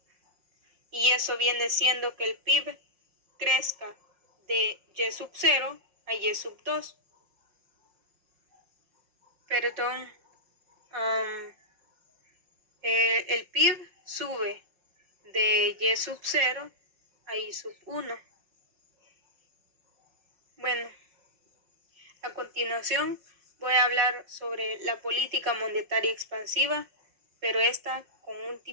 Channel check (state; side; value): late; left; 5.5 ms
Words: Y eso viene siendo que el PIB crezca de Y sub 0 a Y sub 2. Perdón, el PIB sube de Y sub 0 a I sub 1. Bueno, a continuación voy a hablar sobre la política monetaria expansiva, pero esta con un